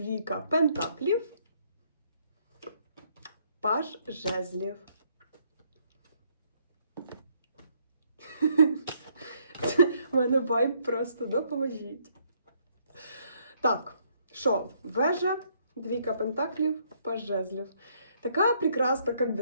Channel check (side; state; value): both; inverted; correlation -0.69